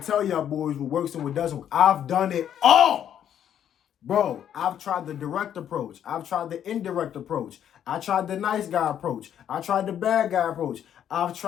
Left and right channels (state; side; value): quieter; right; 9.8 dB